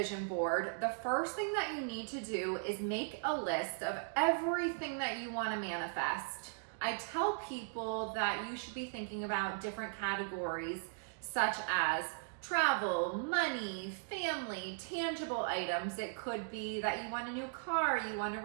board, the first thing that you need to do is make a list of everything that you want to manifest. I tell people that you should be thinking about different categories such as travel, money, family, tangible items. It could be that you want a new car, you want to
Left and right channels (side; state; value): left; silent; digital silence